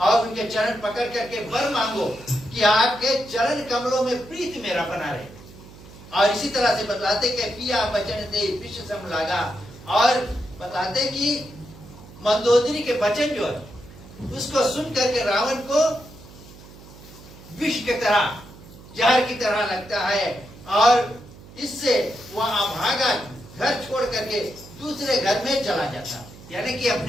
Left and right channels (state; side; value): noise; right; hum, 19 dB below the sound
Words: उनके चरण पकड़ करके वर मांगो कि आपके चरण कमलों में प्रीति मेरा बना रहे। और इसी तरह से बतलाते कि पिया बचन दे विश्व सम लागा, और बताते कि मंदोदरी के वचन जो है उसको सुन करके रावण को विष की तरह, जहर की तरह लगता है, और इससे वह भागा, घर छोड़ करके दूसरे घर में चला जाता, यानी कि